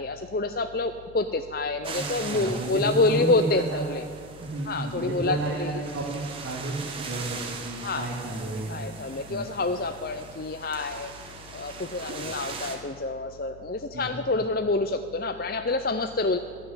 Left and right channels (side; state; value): left; noise; hum, 20 dB below the sound